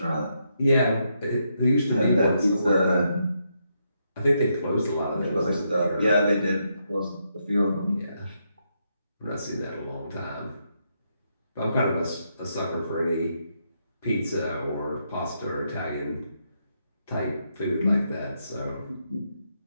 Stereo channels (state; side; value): inverted; both; correlation -0.80